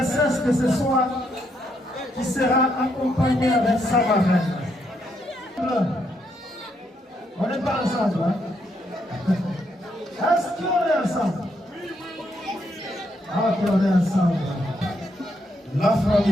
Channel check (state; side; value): normal; both; correlation 0.76